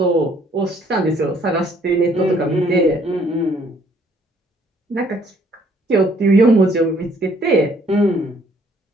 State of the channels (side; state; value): both; normal; correlation 0.63